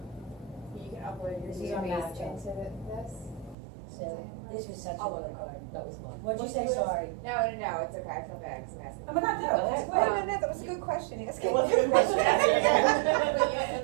You can upload your This is on database Snapchat. into this. So this was such a I'll good look card. That was fun. What'd you say, sorry? No, it's okay, I feel bad, because I'm asking. Oh my God, no, that's No, great. that was a good question, ask it. It was a good question. But you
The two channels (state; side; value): drops out; left; at 3.6 s